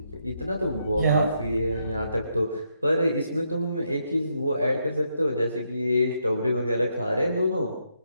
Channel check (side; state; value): both; inverted; correlation -0.78